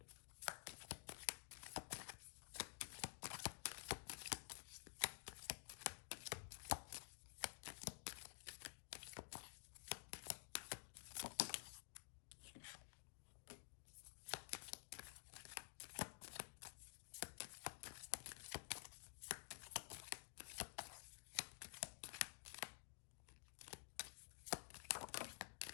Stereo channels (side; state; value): right; silent; digital silence